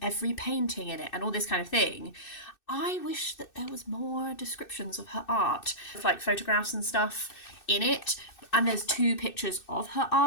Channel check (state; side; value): late; right; 2.6 ms